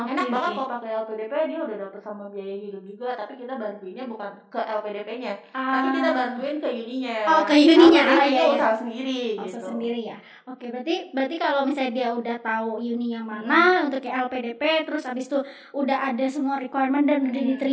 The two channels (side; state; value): both; identical; correlation 1.00